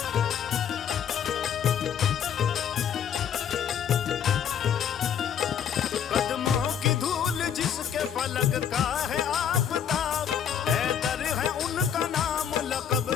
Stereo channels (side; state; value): right; quieter; 8.6 dB